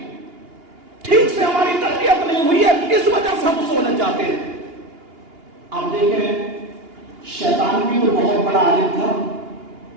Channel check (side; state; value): left; late; 2.8 ms